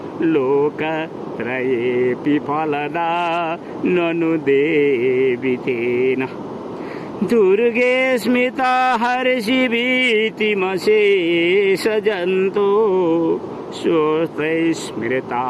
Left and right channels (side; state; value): both; identical; correlation 1.00